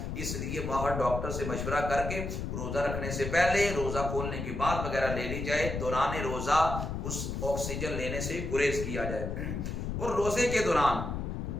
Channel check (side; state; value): left; noise; rumble, 4 dB below the sound